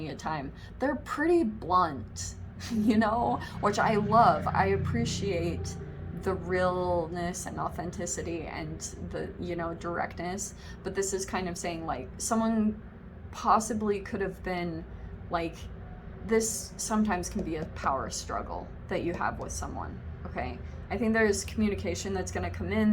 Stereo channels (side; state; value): both; identical; correlation 1.00